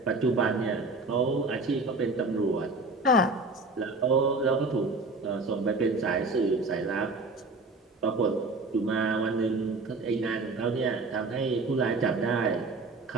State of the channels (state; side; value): quieter; left; 3.2 dB